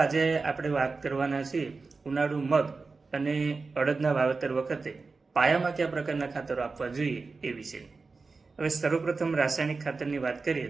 આપણે વાત કરવાના છીએ ઉનાળુ મગ અને અડદના વાવેતર વખતે પાયામાં કયા પ્રકારના ખાતરો આપવા જોઈએ એ વિશે. હવે સર્વપ્રથમ રાસાયણિક ખાતરની વાત કરીએ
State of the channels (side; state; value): left; quieter; 4.2 dB